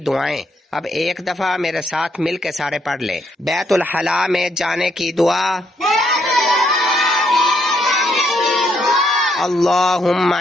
دعائیں۔ اب ایک دفعہ میرے ساتھ مل کے سارے پڑھ لیں۔ بیت الخلاء میں جانے کی دعا، اللہم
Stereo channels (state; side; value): normal; both; correlation 0.74